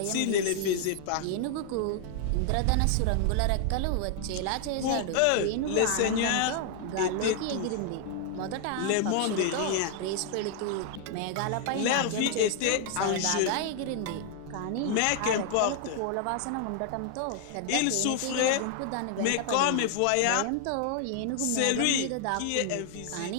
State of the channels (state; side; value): different; both; correlation 0.00